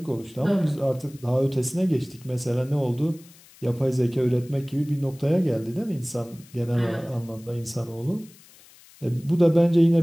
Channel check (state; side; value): noise; left; hiss, 25 dB below the sound